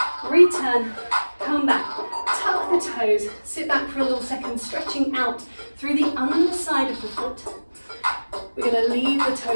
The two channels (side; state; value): both; inverted; correlation -1.00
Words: return, come back. Tuck the toes. Sit back for a little second, stretching out through the underside of the foot. We're going to leave the